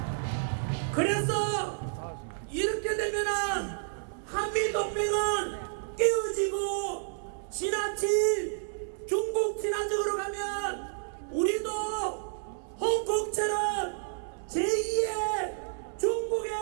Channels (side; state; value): left; silent; 58 dB below the other